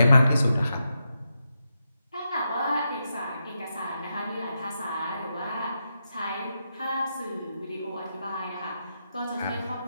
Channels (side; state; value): both; inverted; correlation -0.85